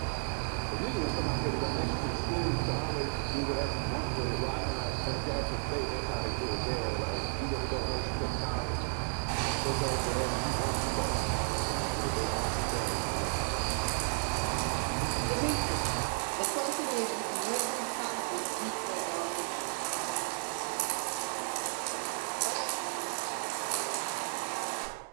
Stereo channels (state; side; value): silent; left; 56 dB below the other